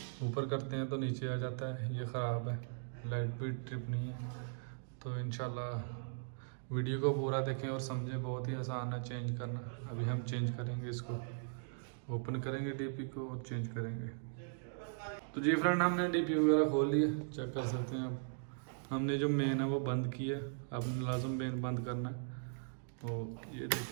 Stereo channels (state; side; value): silent; left; digital silence